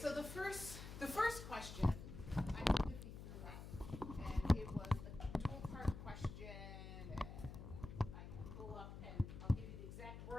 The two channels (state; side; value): noise; left; hum, 10 dB below the sound